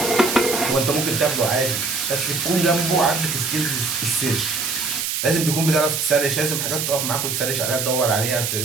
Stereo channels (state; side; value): noise; right; hiss, 1 dB below the sound